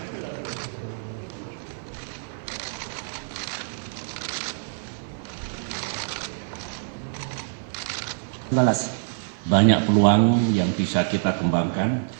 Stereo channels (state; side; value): silent; left; 56 dB below the other